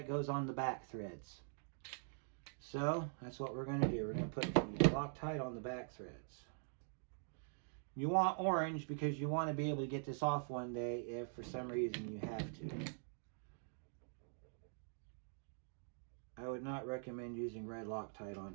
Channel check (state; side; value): silent; left; digital silence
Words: goes on the back threads. So that's what we're going to do. We're going to put the Loctite on the back threads. You want orange because you want to be able to get this off one day if for some reason you have to. I would not recommend using red Loctite